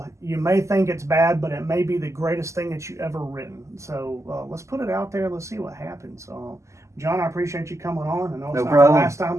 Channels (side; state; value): left; late; 0.14 ms